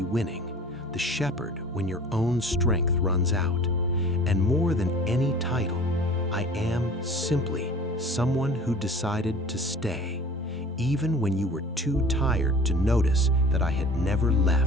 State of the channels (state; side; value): normal; both; correlation 0.44